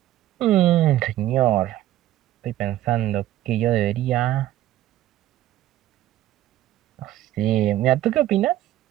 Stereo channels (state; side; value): quieter; left; 13.9 dB